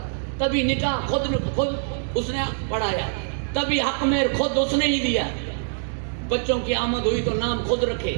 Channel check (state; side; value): silent; left; digital silence